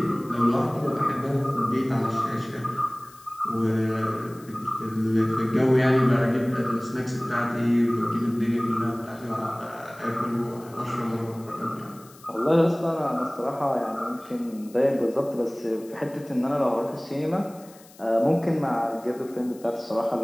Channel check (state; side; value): noise; left; hiss, 24 dB below the sound